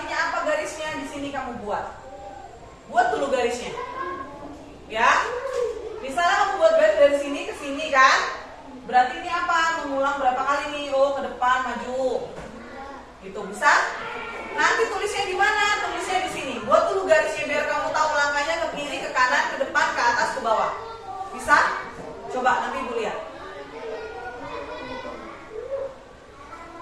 apa garisnya? Di sini kamu buat. Buat dulu garisnya. Ya. Misalnya kamu buat garis dari sini ke sini kan? Berarti ini apa? Mengulang berapa kali nih? Oh, ke depan, maju. Itu bisa? Nanti tulisnya di mana? Tulisnya di sini. Buat dulu garisnya biar kamu tahu langkahnya ke kiri, ke kanan, ke depan, ke atas, ke bawah. Bisa? Coba nanti ibu lihat.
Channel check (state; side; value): identical; both; correlation 1.00